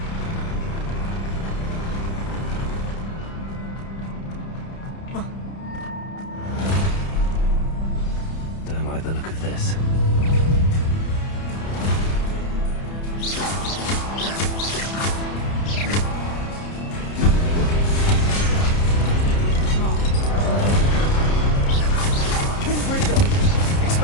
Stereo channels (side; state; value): right; late; 30 ms